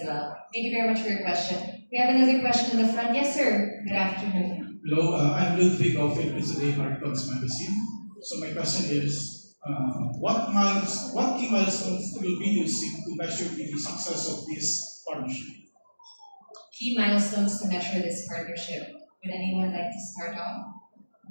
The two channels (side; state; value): both; inverted; correlation -1.00